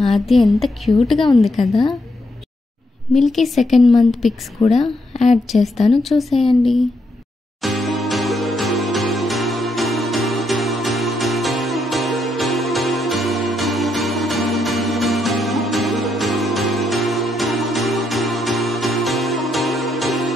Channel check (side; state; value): both; normal; correlation 0.78